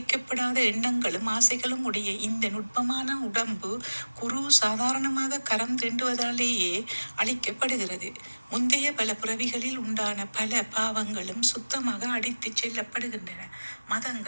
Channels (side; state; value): both; inverted; correlation -1.00